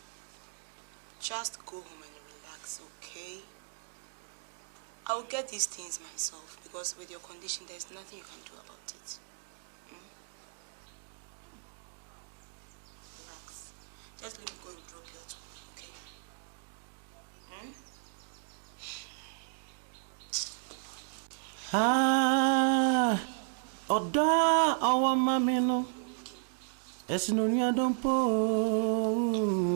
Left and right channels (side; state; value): left; silent; digital silence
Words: Just go home and relax, okay? I'll get these things myself because with your condition, there's nothing you can do about it. Relax. Just let me go and drop you at home, okay? Oda awa mamino esinunya dompo